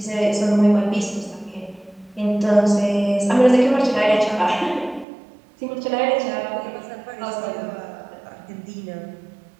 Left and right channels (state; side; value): drops out; left; at 5.1 s